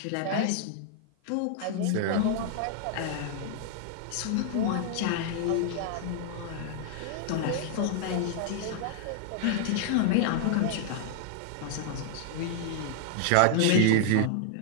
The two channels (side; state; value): both; different; correlation -0.01